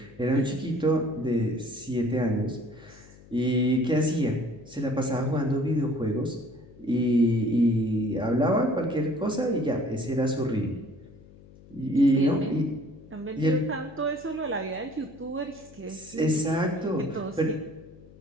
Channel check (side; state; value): left; noise; hum, 22 dB below the sound